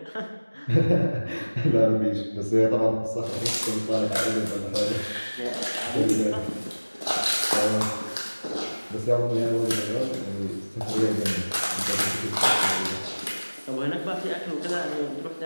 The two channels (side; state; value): both; inverted; correlation -1.00